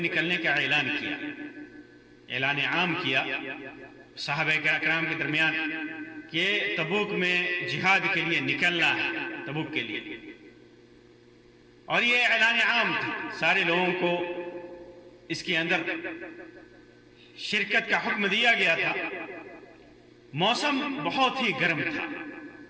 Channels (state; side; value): identical; both; correlation 1.00